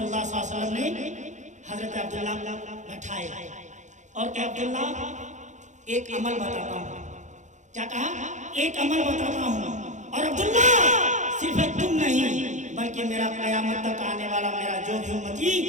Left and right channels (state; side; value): late; left; 0.35 ms